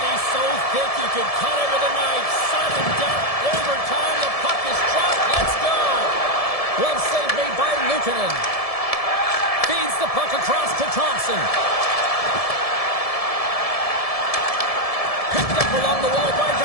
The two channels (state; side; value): late; right; 1.7 ms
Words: so thick you could cut it with a knife. Sudden death, overtime. The puck is dropped. Let's go. Glove save made by Luukkonen. Feeds the puck across to Thompson. Picked up along the wall by